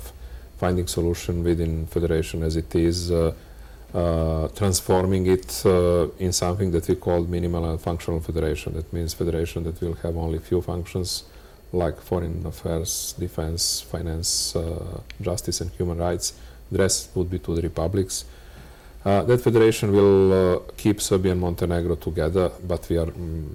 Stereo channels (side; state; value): both; identical; correlation 1.00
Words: finding solution within federation as it is, transforming it in something that we call minimal and functional federation. That means federation that will have only few functions, like foreign affairs, defense, finance, justice and human rights. The rest would be to the republics. That federation will keep Serbia and Montenegro together, but we are,